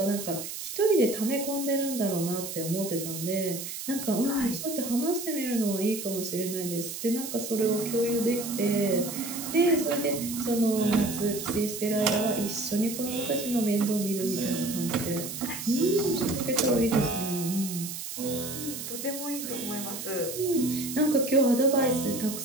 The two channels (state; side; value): noise; right; hiss, 7 dB below the sound